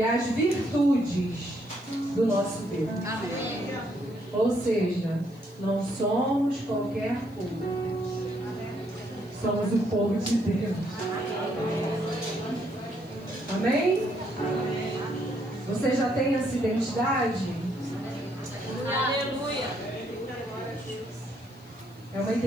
as virtudes do nosso Deus. Amém. Ou seja, não somos qualquer povo. Somos o povo de Deus. Amém? Você já tem essa identidade? Aleluia. É uma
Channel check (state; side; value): noise; left; hiss, 29 dB below the sound